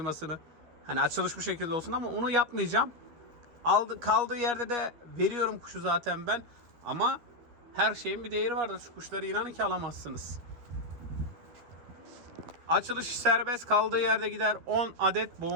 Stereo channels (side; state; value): left; late; 12 ms